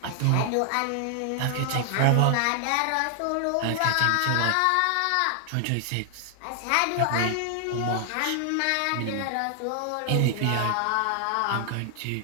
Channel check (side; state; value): both; different; correlation 0.00